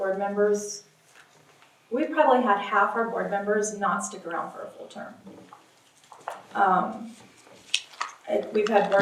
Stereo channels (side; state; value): both; identical; correlation 1.00